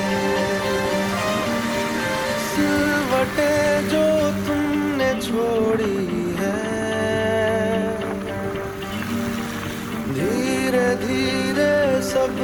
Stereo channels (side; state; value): both; identical; correlation 1.00